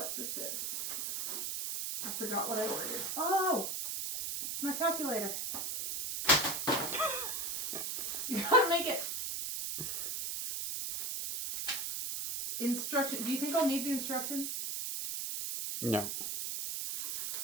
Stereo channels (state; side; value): noise; right; hiss, 2 dB below the sound